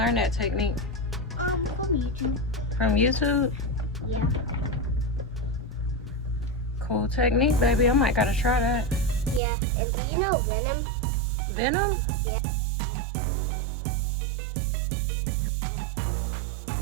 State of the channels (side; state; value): left; drops out; at 9.4 s